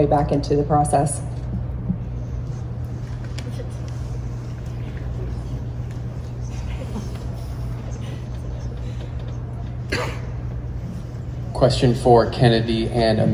back into the process. Question for Kennedy and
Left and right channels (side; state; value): both; identical; correlation 1.00